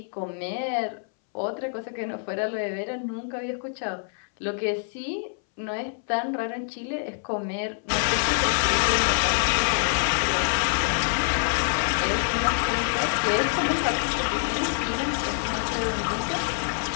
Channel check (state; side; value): silent; right; 61 dB below the other